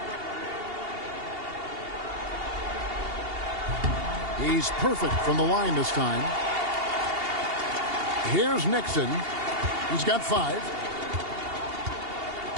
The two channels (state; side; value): late; left; 2.8 ms